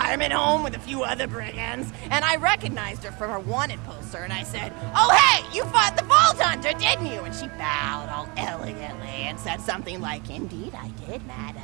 home with a few other brigands, and I recognized her from her wanted poster, and I said, "Oh, hey, you fought the Vault Hunter, didn't you?" And she bowed all elegantly and said something like, "Indeed I did,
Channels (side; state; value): left; quieter; 28.7 dB